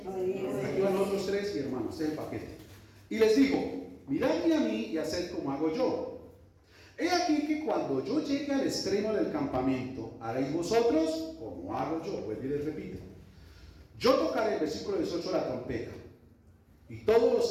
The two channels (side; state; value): both; identical; correlation 1.00